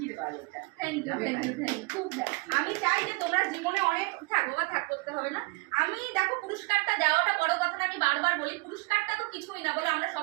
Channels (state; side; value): quieter; left; 26.9 dB